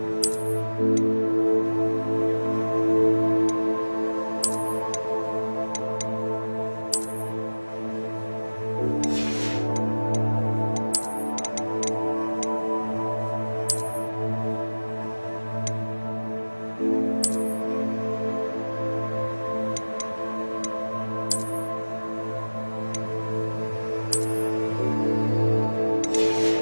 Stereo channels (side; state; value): both; inverted; correlation -1.00